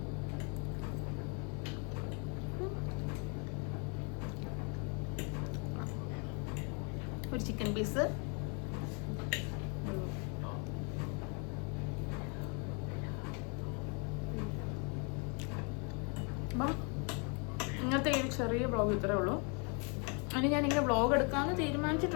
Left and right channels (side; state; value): right; quieter; 35.8 dB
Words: ഒരു ചിക്കൻ പീസ്, അപ്പം ഇങ്ങനത്തെ ഈ ചെറിയ വ്ളോഗ് ഇത്രേ ഉള്ളൂ. അതിന് ഞാനിങ്ങനെ വ്ളോഗ് എടുക്കാമെന്ന്